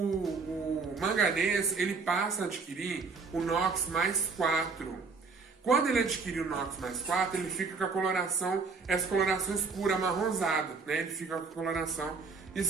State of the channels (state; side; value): quieter; left; 4.6 dB